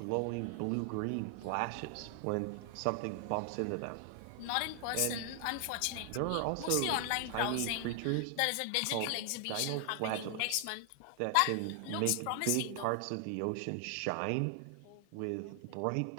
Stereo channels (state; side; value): different; both; correlation 0.00